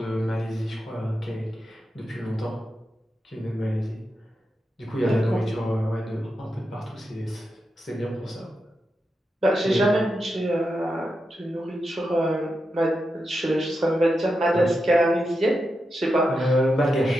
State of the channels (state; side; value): normal; both; correlation 0.88